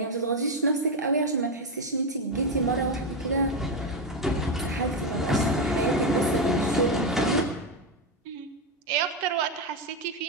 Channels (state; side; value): normal; both; correlation 0.09